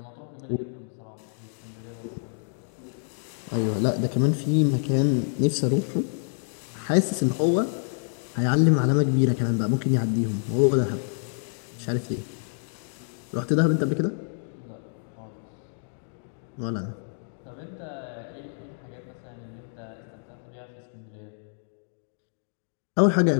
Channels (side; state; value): right; silent; 60 dB below the other